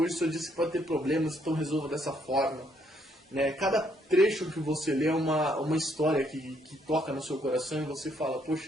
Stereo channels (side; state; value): both; normal; correlation 0.71